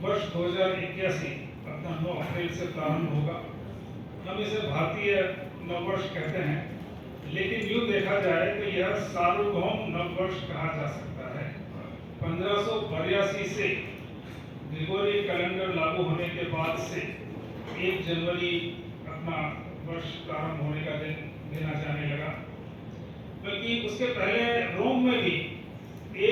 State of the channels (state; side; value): identical; both; correlation 1.00